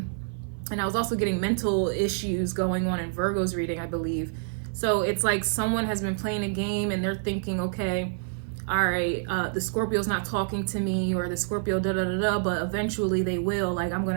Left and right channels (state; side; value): silent; left; 58 dB below the other